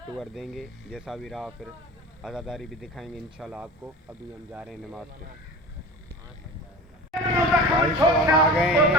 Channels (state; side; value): normal; both; correlation 0.35